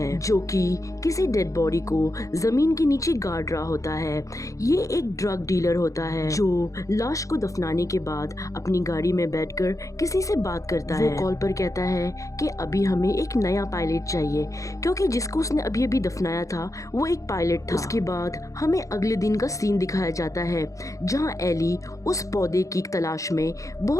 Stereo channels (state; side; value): late; right; 0.16 ms